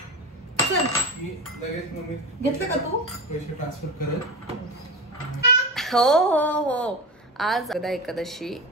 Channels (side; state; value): both; normal; correlation 0.25